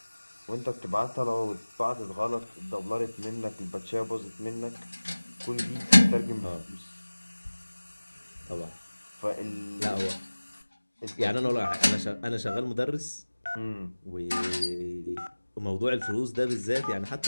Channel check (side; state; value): both; inverted; correlation -1.00